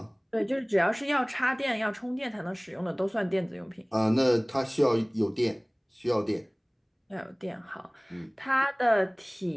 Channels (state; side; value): identical; both; correlation 1.00